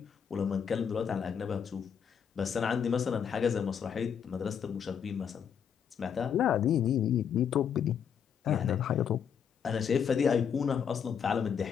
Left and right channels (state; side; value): quieter; right; 7.6 dB